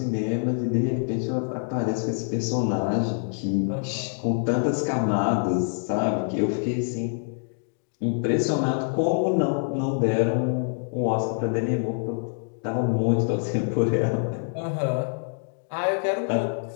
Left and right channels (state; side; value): silent; right; digital silence